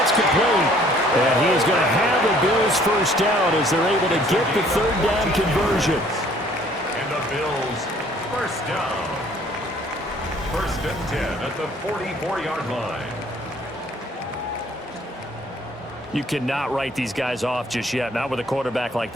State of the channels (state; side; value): normal; both; correlation 0.58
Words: complete. And he is going to have the Bills 1st down as they're able to get the 3rd down conversion. And the Bills 1st down. 1st and 10 at the 44-yard line. You cannot write these guys off just yet. Not with a quarterback like